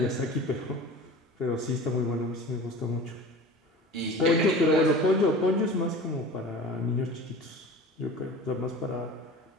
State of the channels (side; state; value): both; normal; correlation 0.38